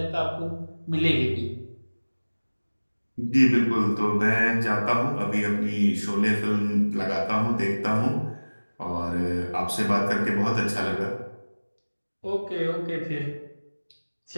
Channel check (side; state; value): both; inverted; correlation -1.00